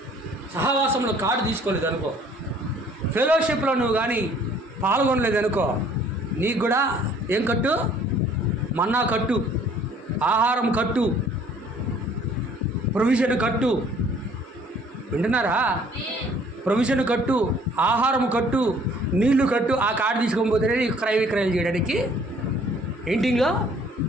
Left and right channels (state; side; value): normal; both; correlation 0.57